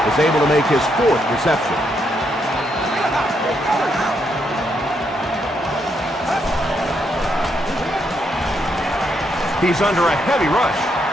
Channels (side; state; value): both; normal; correlation 0.77